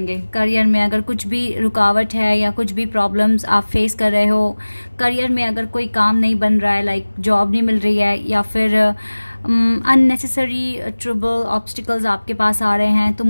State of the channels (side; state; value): both; inverted; correlation -1.00